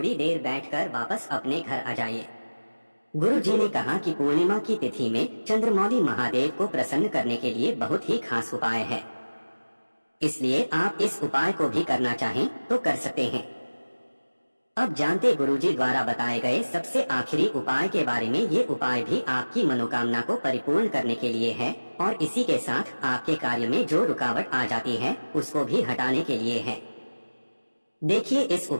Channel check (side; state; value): both; inverted; correlation -1.00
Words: देर बैठकर वापस अपने घर आ जाइए। गुरु जी ने कहा कि पूर्णिमा की तिथि में चंद्रमौली महादेव को प्रसन्न करने के लिए बहुत ही खास उपाय है, इसलिए आप इस उपाय को भी करना चाहें तो कर सकते हैं। अब जानते गुरुजी द्वारा बताए गए सबसे आखिरी उपाय के बारे में। ये उपाय भी आपकी मनोकामना को परिपूर्ण करने के लिए है और इसी के साथ आपके कार्य में जो रुकावट आ जाती है उसको भी हटाने के लिए है। देखिए, इस